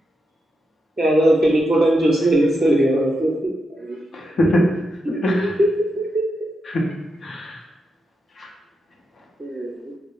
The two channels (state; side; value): normal; both; correlation 0.85